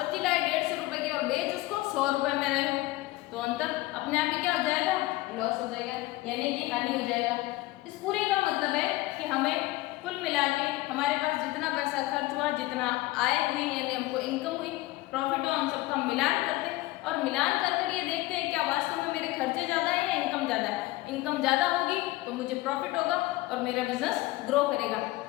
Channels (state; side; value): quieter; right; 18.9 dB